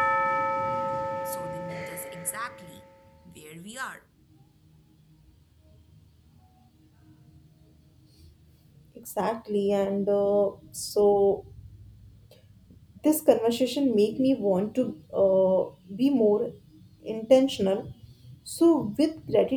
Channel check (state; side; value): identical; both; correlation 1.00